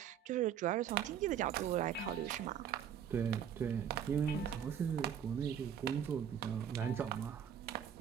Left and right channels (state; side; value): quieter; left; 8.8 dB